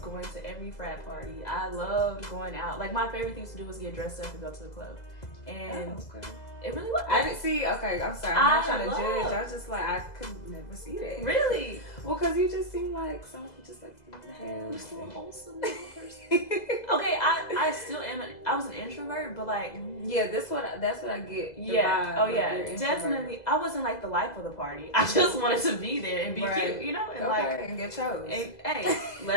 going to every frat party. I loved going out. My favorite thing to do was get dressed up and go to the club, and it really was. I didn't see. Okay, I'm sorry. I'm not trying to judge. I was just I could never see that. Really? Well, because you just seem like someone just you're so wholesome little person. Okay, I still am. I was an introvert, but that's what I get. Yeah. Oh yeah. Definitely. I wasn't the life of the party. I just wanted to be there and be cute, and and get chose. And, hey,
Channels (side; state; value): right; late; 2.0 ms